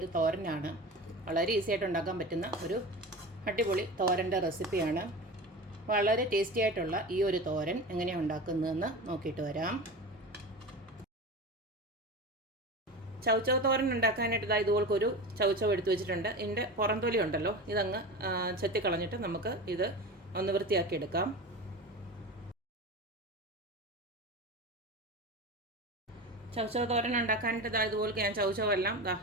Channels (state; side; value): normal; both; correlation 0.29